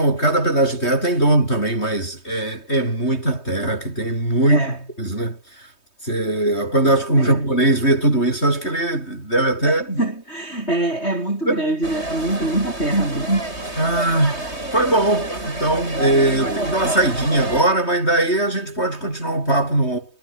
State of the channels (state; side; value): late; right; 3.2 ms